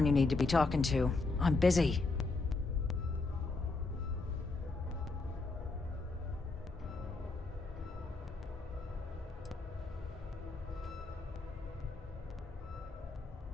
you need to be talking to. I'm busy.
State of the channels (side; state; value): right; quieter; 3.6 dB